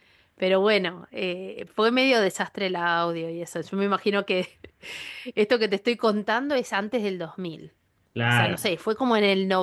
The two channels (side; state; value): both; identical; correlation 1.00